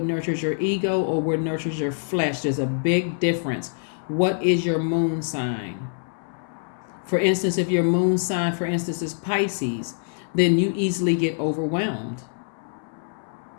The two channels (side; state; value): right; silent; 62 dB below the other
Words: nurtures your ego or what nurtures your flesh. There's a big difference. What is your moon sign? For instance, if your moon sign, for instance, is Pisces, then you easily get overwhelmed.